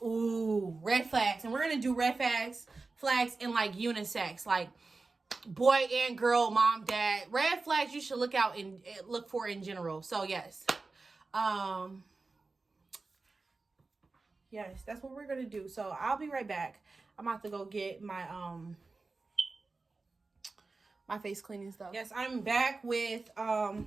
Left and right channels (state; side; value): quieter; left; 3.8 dB